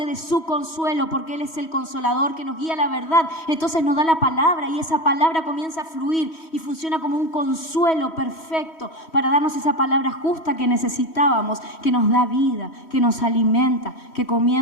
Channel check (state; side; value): late; right; 3.1 ms